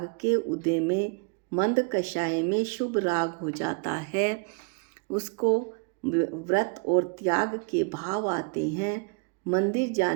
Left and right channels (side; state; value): left; quieter; 32.9 dB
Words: के उदय में मंद कषाय में शुभ राग हो जाता है, उसको व्रत और त्याग के भाव आते हैं, मंदिर